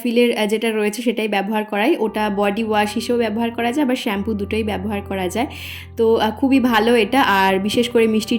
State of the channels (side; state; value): both; identical; correlation 1.00